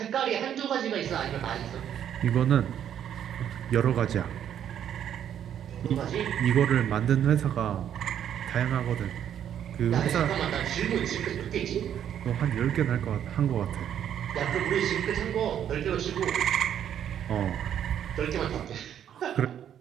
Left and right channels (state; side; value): quieter; left; 9.7 dB